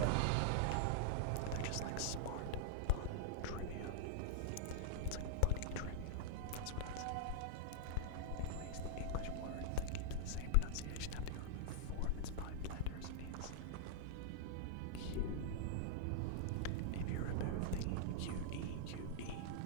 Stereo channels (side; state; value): both; different; correlation -0.01